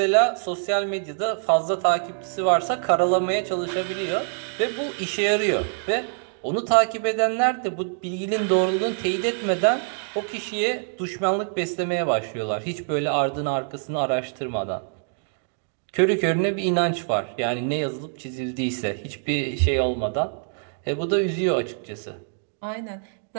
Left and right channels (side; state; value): left; silent; digital silence